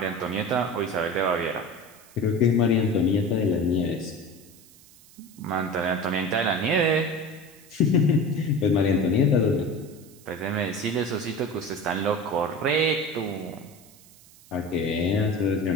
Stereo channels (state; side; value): noise; right; hiss, 24 dB below the sound